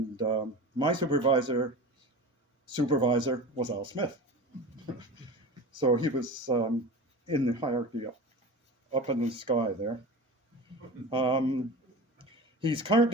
my supervisor was Al Smith. So he was in the hierarchy up in the sky there. He's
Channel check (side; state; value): both; normal; correlation 0.32